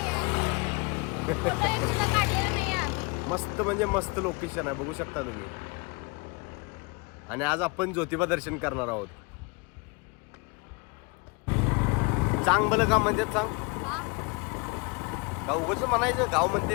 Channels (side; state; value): right; quieter; 30.1 dB